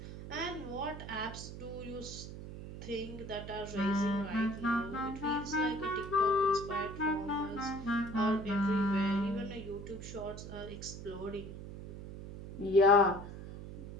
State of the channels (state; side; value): noise; right; hum, 11 dB below the sound